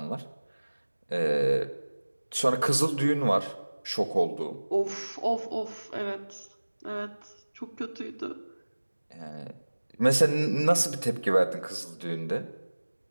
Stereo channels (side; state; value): both; inverted; correlation -1.00